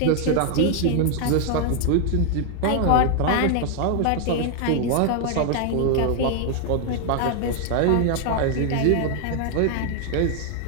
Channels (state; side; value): different; both; correlation 0.00